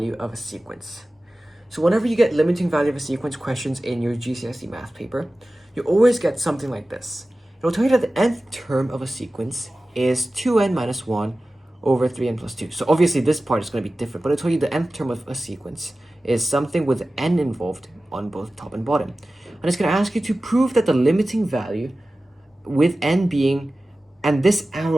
of a sequence. So whenever you get limiting value of a sequence questions in your GCSE Maths paper, you always get something like this. It'll tell you that the nth term of a sequence is 2n minus 1 over 3n plus 2. So obviously this part is going to be different, but it'll tell you the nth term of a sequence is something with n involved on both top and bottom. And it's going to ask you to prove that the limiting value with n being, and this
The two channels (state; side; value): normal; both; correlation 0.96